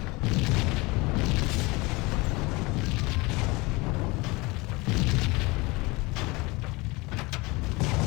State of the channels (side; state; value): right; quieter; 24.3 dB